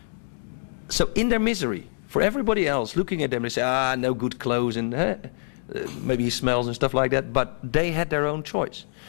So in their misery, for everybody else looking at them, they say, no good clothes, and maybe he smells and stuff like that, but they had their own choice.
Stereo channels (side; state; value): right; silent; digital silence